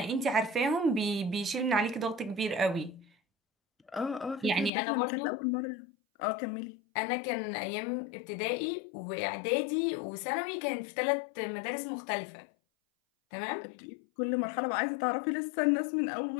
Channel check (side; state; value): right; drops out; at 4.7 s